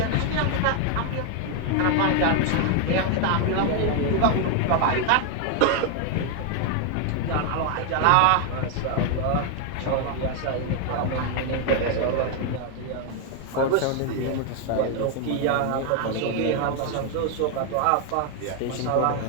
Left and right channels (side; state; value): both; different; correlation 0.00